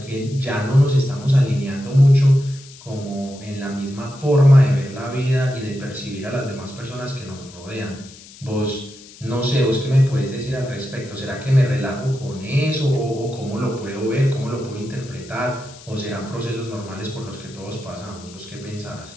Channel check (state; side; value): noise; left; hiss, 20 dB below the sound